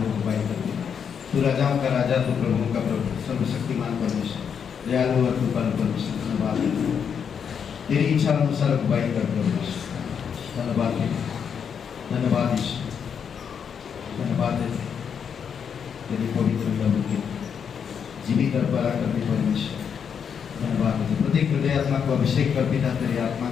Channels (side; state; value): right; quieter; 7.2 dB